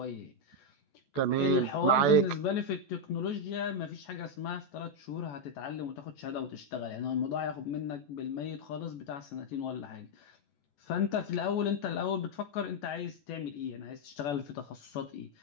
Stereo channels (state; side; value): late; right; 14 ms